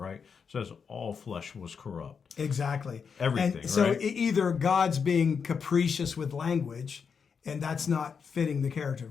It says all flesh was corrupt. Exactly. Everything, and so right? Either God's being capricious with language, and that's not fitting the character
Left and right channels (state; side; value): quieter; right; 6.2 dB